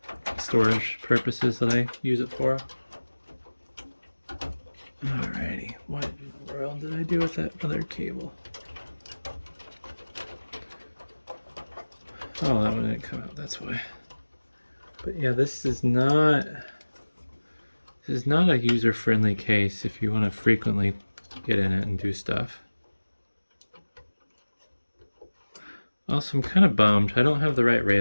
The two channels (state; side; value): inverted; both; correlation -1.00